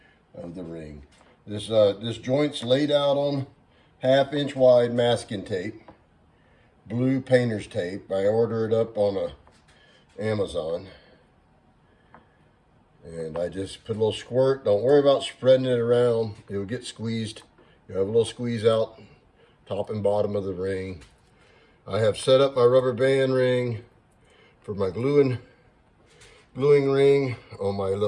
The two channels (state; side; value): identical; both; correlation 1.00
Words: of the ring. This joint's laid out on 1/2 inch wide masking tape, blue painter's tape. I order it up on Amazon. And I just put a little squirt. Don't worry about spreading it around. It will get squeezed. You have a little squeeze out top and bottom of the ring. I have set up my rubber band ring for my gluing ring on my